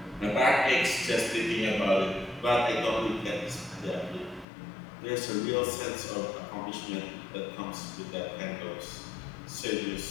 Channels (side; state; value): right; drops out; at 4.5 s